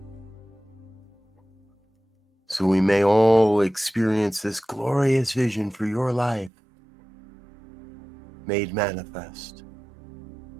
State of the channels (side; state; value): left; drops out; at 6.5 s